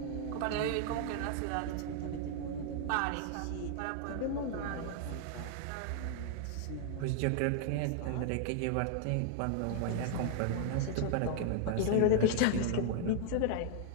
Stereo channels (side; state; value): both; different; correlation -0.01